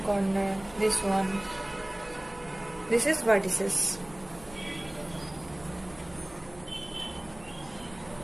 this one. This is vertices.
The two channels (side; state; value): right; noise; hum, 22 dB below the sound